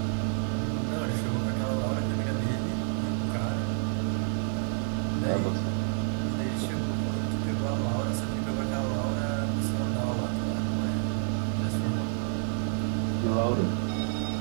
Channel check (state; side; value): silent; left; 59 dB below the other